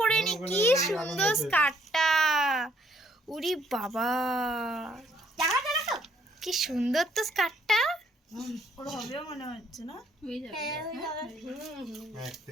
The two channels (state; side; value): normal; both; correlation 0.67